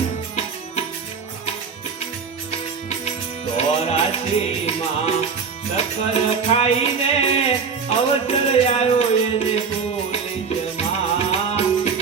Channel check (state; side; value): quieter; left; 5.8 dB